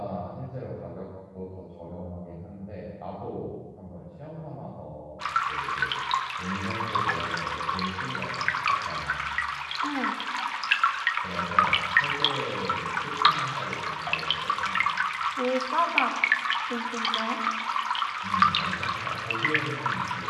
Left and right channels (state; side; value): identical; both; correlation 1.00